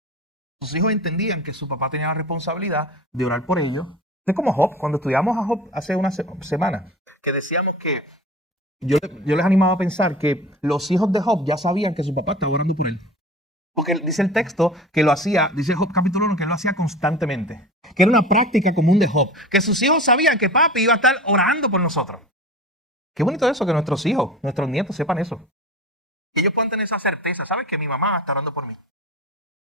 Sus hijos entendían que su papá tenía la responsabilidad de orar por ellos. Es como Job, cuando estudiamos a Job hace una semana, que decíamos que yo les animaba a pensar que los hijos de Job ya sabían que su papá estaba orando por él. Porque dice el texto que lo hacía, dice Job capítulo 1, que lo hacía constantemente. Que era una práctica común de Job. Que sus hijos sabían que papi iba a estar orando por nosotros. Qué bonito eso, que nuestros hijos, nuestros nietos sepan eso. Que ellos puedan tener esa certeza. ¿Saben que mi mamá está orando por mí?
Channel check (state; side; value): normal; both; correlation 0.35